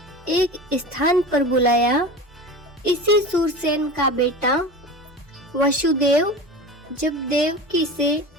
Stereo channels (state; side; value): normal; both; correlation 0.31